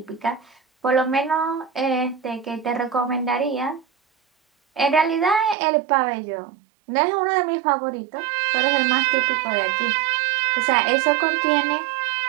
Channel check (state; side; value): drops out; left; at 5.6 s